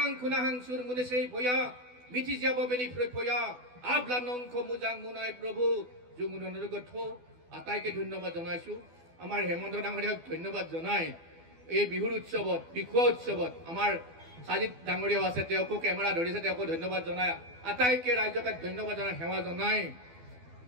খুনাহাং সুৰ মুনেছেই ভয়া মিঠি যাব বেনি ফয়া আবলা নংখ মুজাং মুনাই প্ৰভু জংগুদৈ গঠ আটাইকে ধন্যবাদ জনাইছো আমাৰ হেমন্ত ডাঙৰীয়াক ধন্যবাদ জনাই এই বিহুৰ উৎসৱত বিহুৱা উৎসৱত আমাৰ সাজিত ডাঙৰীয়াও আছে তেওঁকো কেমেৰা ধৰিছে তেওঁকো ধন্যবাদ জনাই আটাইকে ৰাইজকে ধন্যবাদ জনাই সেৱা জনাই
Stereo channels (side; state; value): left; late; 12 ms